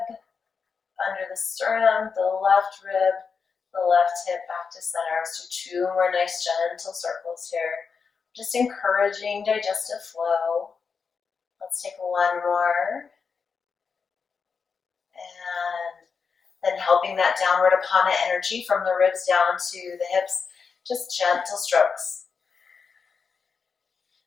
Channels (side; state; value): right; quieter; 5.6 dB